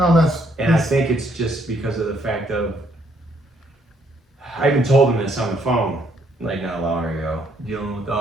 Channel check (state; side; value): normal; both; correlation 0.70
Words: that's. And I think it's just because of the fact of, I even told him this on the phone, like not long ago, dealing with